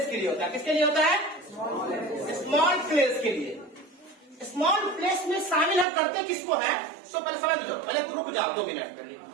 के लिए होता है। किसके लिए होता है, स्मॉल प्लेस के लिए। स्मॉल प्लेस में शामिल हम करते किसको है, तो पहले समझ लो, पहले रुक जाओ 2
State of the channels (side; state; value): left; drops out; at 5.9 s